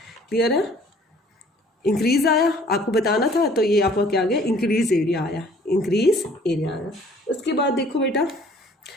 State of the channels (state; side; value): normal; both; correlation 0.55